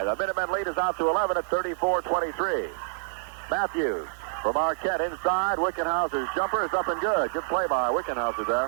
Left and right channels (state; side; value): silent; left; 59 dB below the other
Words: the Minutemen lead is out to 11 at 34-23. Matthews from Marquette inside. Wickenhauser's jumper is up and good. Good play by Wickenhauser